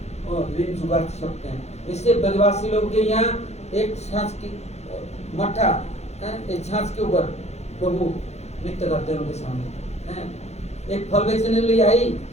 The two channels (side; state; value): right; late; 0.31 ms